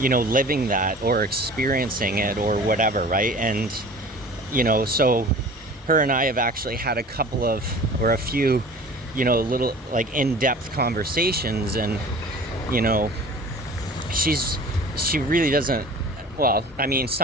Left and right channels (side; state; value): both; normal; correlation 0.42